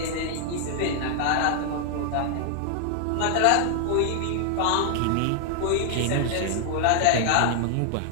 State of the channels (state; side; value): different; both; correlation 0.00